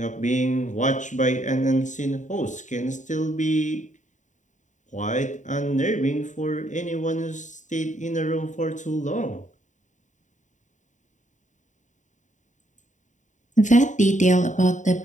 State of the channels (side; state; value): right; late; 0.36 ms